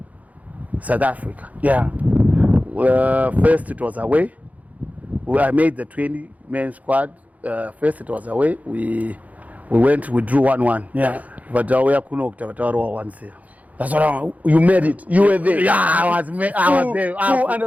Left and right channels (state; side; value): late; left; 0.073 ms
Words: South Africa. Yeah. First it was away. I made the 20-man squad. First it was away. We drew 1-1. Yeah. But we are once. That's what you made it. You were there. Yeah, I was there. Full